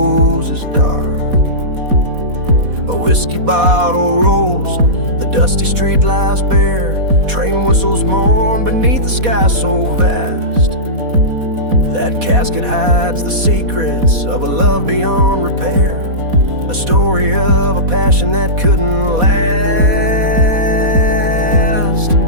dark. A whiskey bottle rolls, the dusty street lies bare, train whistles mourn beneath the sky so vast. That casket hides the secrets of a love beyond repair, a story of a passion that couldn't last.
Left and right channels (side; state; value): left; late; 4.1 ms